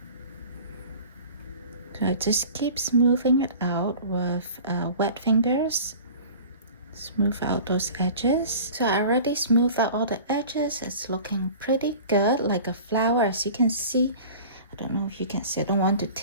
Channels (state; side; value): inverted; both; correlation -0.41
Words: So I just keep smoothing it out with wet fingers. Smooth out those edges. So I already smoothed out all the edges. It's looking pretty good, like a flower, as you can see. I don't know if you can see, I don't want to